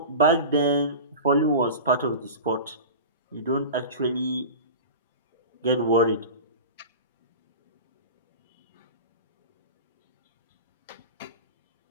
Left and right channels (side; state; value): both; inverted; correlation -0.32